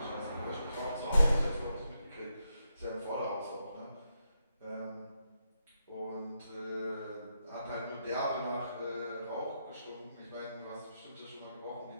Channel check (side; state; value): both; inverted; correlation -0.83